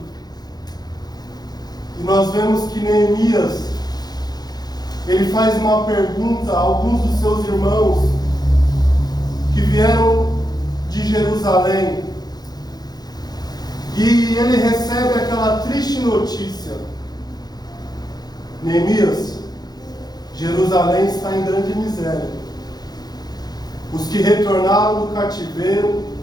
E nós vemos que Neemias, ele faz uma pergunta a alguns dos seus irmãos que vieram de Jerusalém. E ele recebe aquela triste notícia: Neemias, Jerusalém está em grande miséria. Os que retornaram do cativeiro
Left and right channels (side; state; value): right; late; 0.19 ms